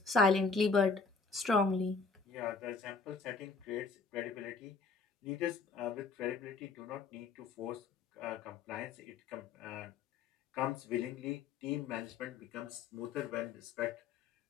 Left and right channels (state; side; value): quieter; right; 4.7 dB